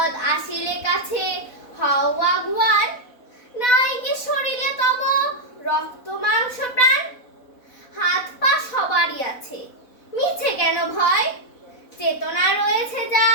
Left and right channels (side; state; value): right; late; 4.1 ms